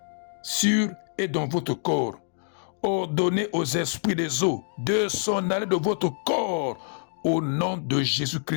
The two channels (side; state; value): right; silent; digital silence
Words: sur et dans votre corps. Ordonnez aux esprits des eaux de s'en aller de votre corps au nom de